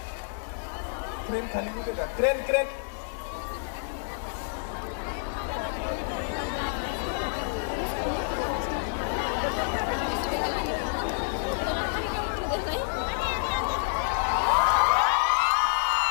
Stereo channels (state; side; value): silent; right; digital silence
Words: खाली कुठे का क्रेन